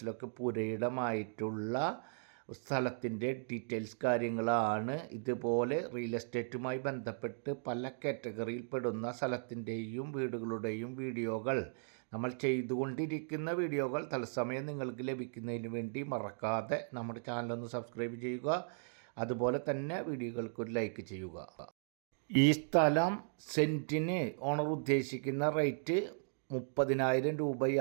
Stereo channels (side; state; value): left; silent; digital silence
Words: പുരയിടമായിട്ടുള്ള സ്ഥലത്തിൻ്റെ ഡീറ്റെയിൽസ് കാര്യങ്ങളാണ്. ഇതുപോലെ റിയൽ എസ്റ്റേറ്റുമായി ബന്ധപ്പെട്ട് പല കാറ്റഗറിയിൽ പെടുന്ന സ്ഥലത്തിൻ്റെയും വീടുകളുടെയും വീഡിയോകൾ നമ്മൾ ചെയ്തുകൊണ്ടിരിക്കുന്ന വീഡിയോകൾ തത്സമയം നിങ്ങൾക്ക് ലഭിക്കുന്നതിന് വേണ്ടി മറക്കാതെ നമ്മുടെ ചാനലൊന്ന് സബ്സ്ക്രൈബ് ചെയ്യുക. അതുപോലെ തന്നെ വീഡിയോകൾക്കൊരു ലൈക്ക് ചെയ്യുക. ഈ സ്ഥലം സെൻറ്റിന് ഓണർ ഉദ്ദേശിക്കുന്ന റേറ്റ് 30,000